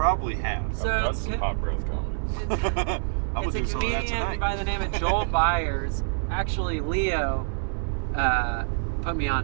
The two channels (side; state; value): left; silent; digital silence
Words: have. So I've done it's some hot breath comedy. I'm It's gonna a do some of that comedian tonight. by the name of Joel Byers. Actually, Leo put me